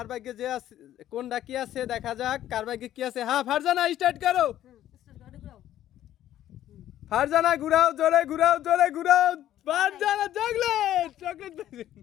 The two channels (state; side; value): quieter; right; 12.4 dB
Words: ভাগ্যে যে আছে, কোনটা কি আছে দেখা যাক কার ভাগ্যে কি আছে। হ্যাঁ ফারজানা স্টার্ট করো। ফারজানা ঘুরাও, জোরে ঘুরাও, জোরে ঘুরাও। ফারজানা চকলেট, চকলেট পাইছে।